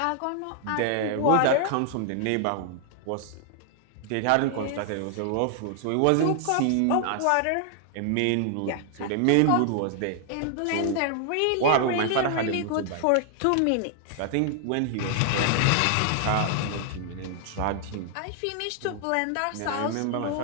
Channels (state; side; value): different; both; correlation 0.00